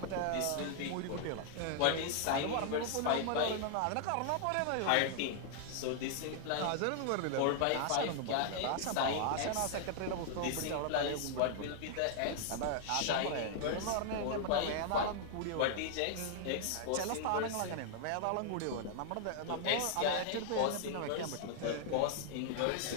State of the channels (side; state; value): both; different; correlation -0.01